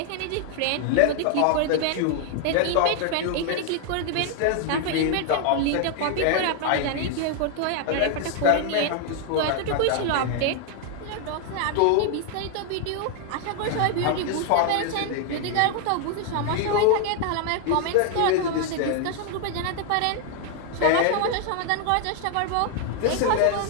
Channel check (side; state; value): both; different; correlation 0.00